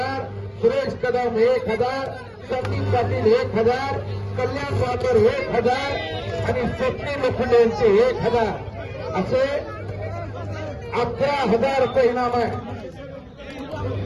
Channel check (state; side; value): identical; both; correlation 1.00